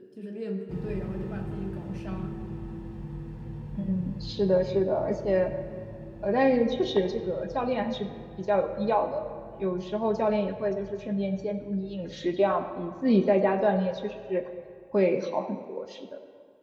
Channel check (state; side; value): identical; both; correlation 1.00